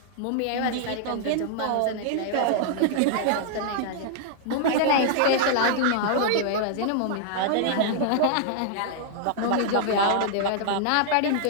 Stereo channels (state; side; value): different; both; correlation -0.01